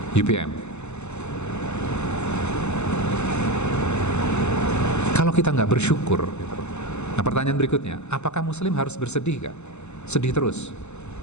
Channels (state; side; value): late; right; 0.82 ms